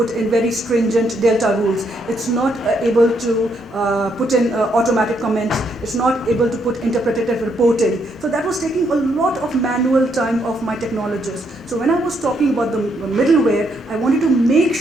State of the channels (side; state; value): both; normal; correlation 0.75